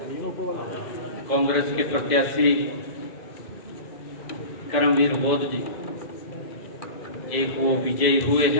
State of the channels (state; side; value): late; right; 2.0 ms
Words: कांग्रेस के प्रत्याशी करमवीर बौद्ध जी एक वो विजयी हुए